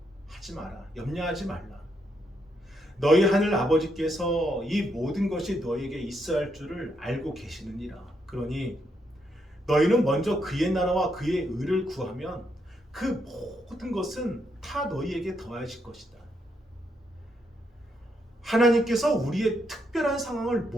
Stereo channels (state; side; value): normal; both; correlation 0.78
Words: 하지 마라. 염려하지 말라. 너희 하늘 아버지께서 이 모든 것이 너희에게 있어야 할 줄을 알고 계시느니라. 그러니 너희는 먼저 그의 나라와 그의 의를 구하면 그 모든 것은 다 너희에게 더하실 것이다. 하나님께서 우리의 특별한 상황을